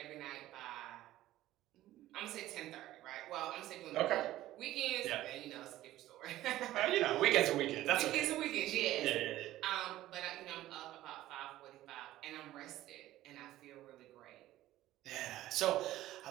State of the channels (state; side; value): quieter; left; 14.9 dB